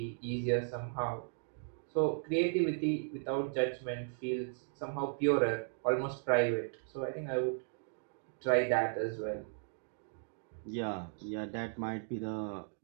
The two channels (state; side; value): silent; left; digital silence